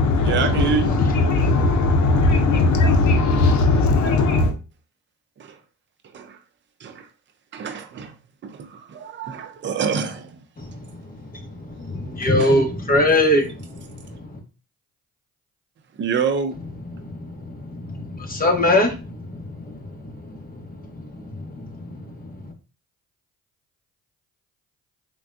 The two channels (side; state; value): both; normal; correlation 0.32